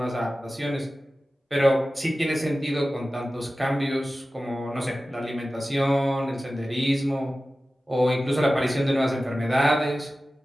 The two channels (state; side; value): normal; both; correlation 0.95